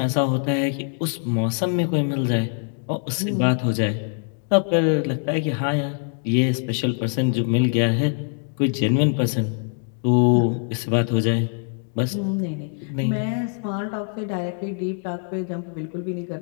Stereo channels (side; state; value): right; silent; 57 dB below the other